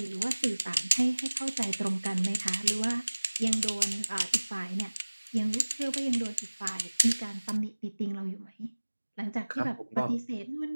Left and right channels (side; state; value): both; inverted; correlation -1.00